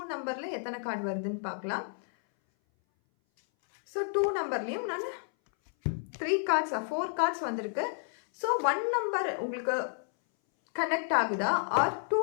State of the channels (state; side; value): silent; right; 57 dB below the other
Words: நம்பரில் எத்தனை கார்டு வருதுன்னு பார்க்கலாம். ஸோ 2 நம்பர்லேயும் நான் 4 கார்ட்ஸ் வந்திருக்கு. ஸோ 1 நம்பர் உங்களுக்கு கனெக்ட் ஆகுதா ஆர்